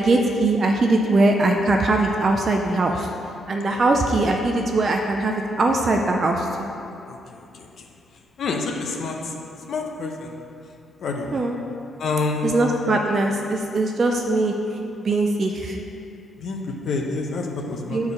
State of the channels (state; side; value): normal; both; correlation 0.78